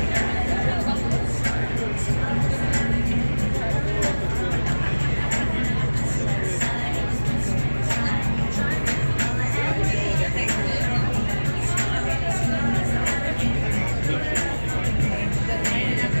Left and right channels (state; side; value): inverted; both; correlation -1.00